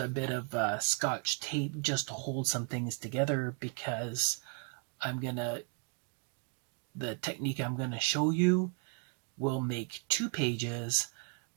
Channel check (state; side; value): quieter; left; 38.5 dB